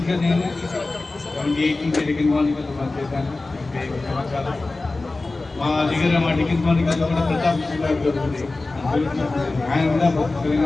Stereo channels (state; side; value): quieter; right; 3.3 dB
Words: నేను 78 టెలికన్ మార్నింగ్ చేశాను. 5 సంవత్సరాలు మా దగ్గర మా టికెట్ మార్నింగ్ కూడా ప్రతాప్ గారు ఉంది, ఆయన కూడా